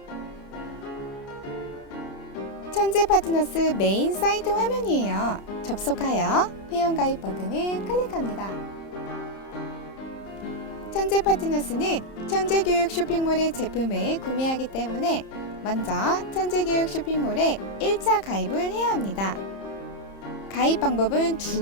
천재 파트너스 메인 사이트 화면이에요. 접속하여 회원가입 버튼을 클릭합니다. 천재 파트너스는 천재교육 쇼핑몰의 제품을 구매하기 때문에 먼저 천재교육 쇼핑몰에 1차 가입을 해야 합니다. 가입 방법은 두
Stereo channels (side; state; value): right; late; 30 ms